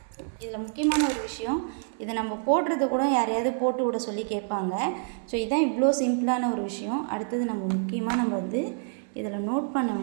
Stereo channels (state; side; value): silent; left; 60 dB below the other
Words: இதில் முக்கியமான ஒரு விஷயம், இதை நம்ம போடுறது கூட யாரையாவது போட்டு விட சொல்லி கேட்பாங்க. ஸோ இதுதான் இவ்வளோ சிம்பிளான ஒரு விஷயம். அடுத்தது நம்ம வந்து இதில் நோட் பண்ண